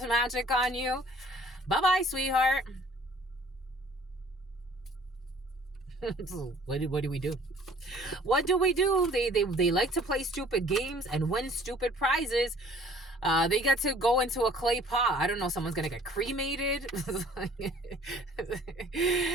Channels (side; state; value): both; normal; correlation 0.54